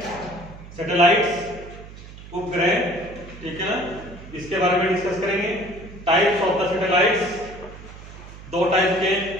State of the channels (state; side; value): noise; right; hum, 16 dB below the sound